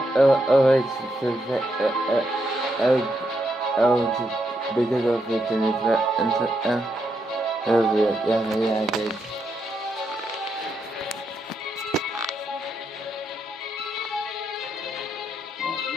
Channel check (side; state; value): both; normal; correlation 0.80